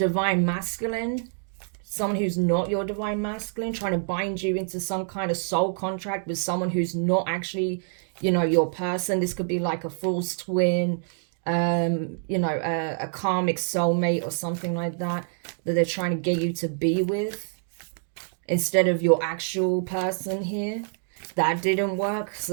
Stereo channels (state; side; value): silent; left; digital silence